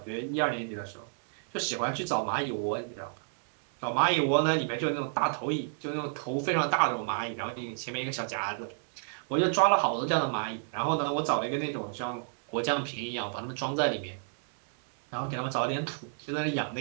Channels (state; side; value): silent; left; digital silence